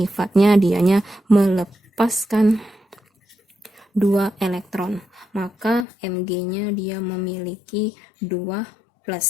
dianya melepaskan 2 elektron. Maka Mg-nya dia memiliki 2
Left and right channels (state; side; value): drops out; right; at 5.9 s